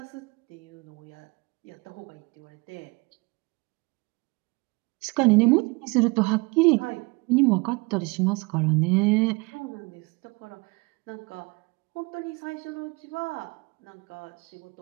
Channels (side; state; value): left; quieter; 27.1 dB